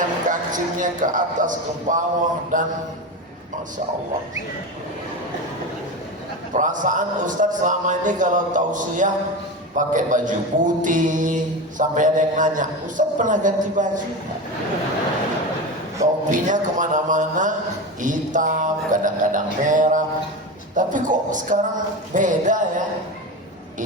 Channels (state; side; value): normal; both; correlation 0.23